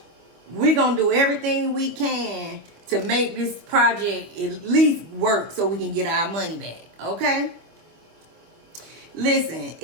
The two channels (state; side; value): late; left; 25 ms